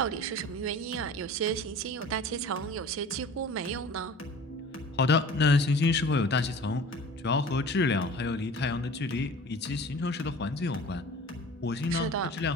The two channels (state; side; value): normal; both; correlation 0.42